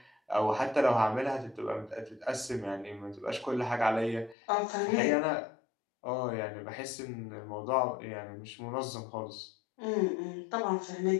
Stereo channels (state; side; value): drops out; right; at 4.4 s